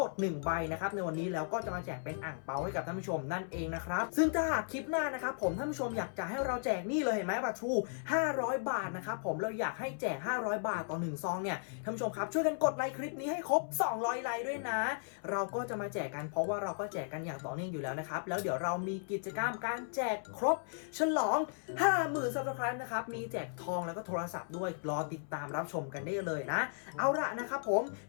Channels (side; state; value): right; silent; 54 dB below the other